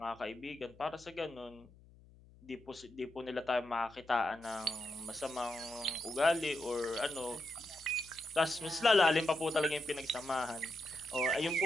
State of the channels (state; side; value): noise; left; hum, 24 dB below the sound